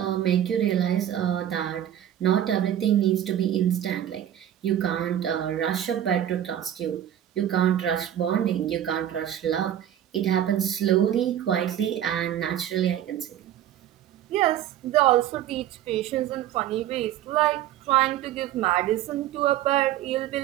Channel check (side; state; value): left; quieter; 11.2 dB